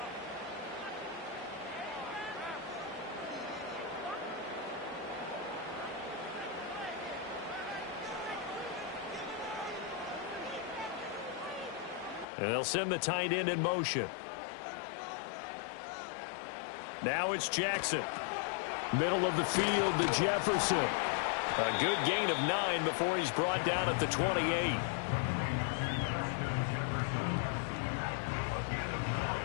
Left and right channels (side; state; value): right; drops out; at 12.2 s